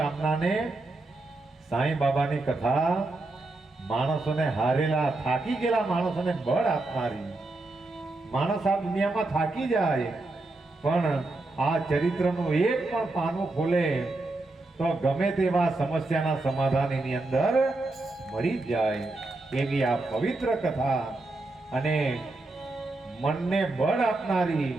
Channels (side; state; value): left; quieter; 3.0 dB